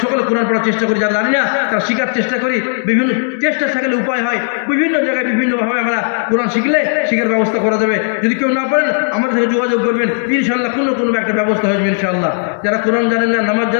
সকলে কোরআন পড়ার চেষ্টা করি, যারা জানি না তারা শিখার চেষ্টা করি। বিভিন্ন চেষ্টা থাকলে উপায় হয়, বিভিন্ন জায়গায় বিভিন্নভাবে আমরা কোরআন শিখার ব্যবস্থা করা যাবে। যদি কেউ না পারেন আমাদের সাথে যোগাযোগ করবেন, ইনশাআল্লাহ কোনো একটা ব্যবস্থা হয়ে যাবে ইনশাআল্লাহ। যারা কোরআন জানেন না, নামাজ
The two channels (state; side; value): silent; right; 70 dB below the other